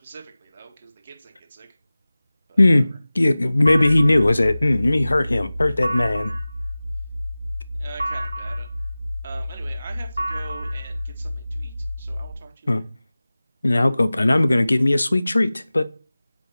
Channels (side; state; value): both; inverted; correlation -0.98